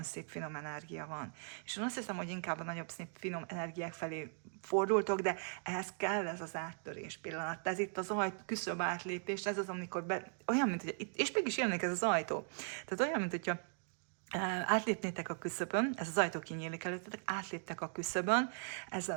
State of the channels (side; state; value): left; silent; 52 dB below the other